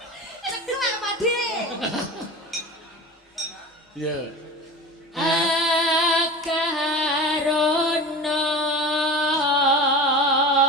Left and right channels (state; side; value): normal; both; correlation 0.32